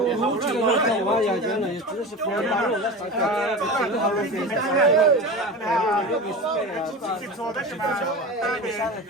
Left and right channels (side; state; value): both; normal; correlation 0.29